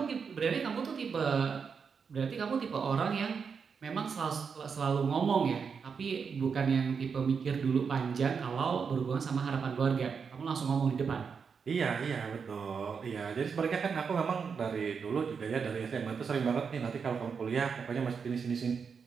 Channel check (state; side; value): quieter; left; 6.0 dB